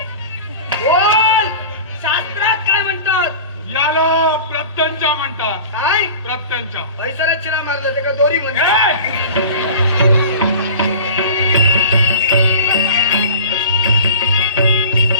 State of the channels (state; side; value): inverted; both; correlation -0.39